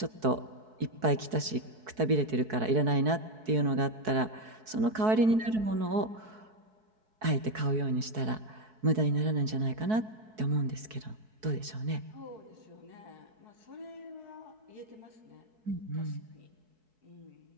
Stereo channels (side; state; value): left; late; 4.6 ms